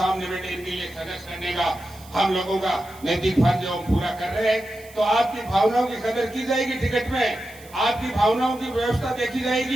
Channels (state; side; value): noise; right; hiss, 22 dB below the sound